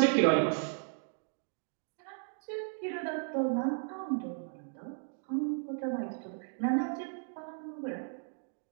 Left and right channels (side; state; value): left; silent; 54 dB below the other